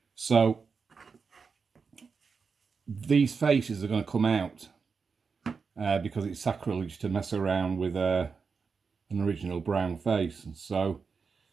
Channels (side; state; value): left; quieter; 5.3 dB